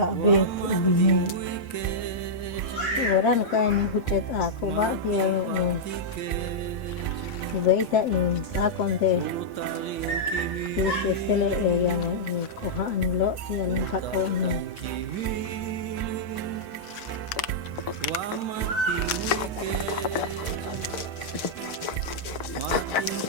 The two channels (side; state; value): right; late; 7.2 ms